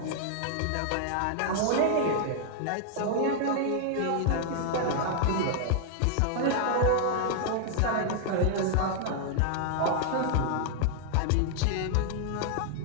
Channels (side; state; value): both; different; correlation 0.00